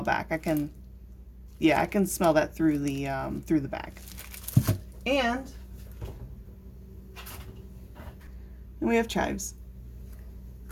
back. I can smell that through the bag. And we have chives.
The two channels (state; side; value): identical; both; correlation 1.00